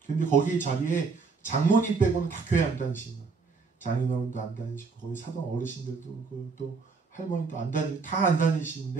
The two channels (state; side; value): quieter; left; 4.7 dB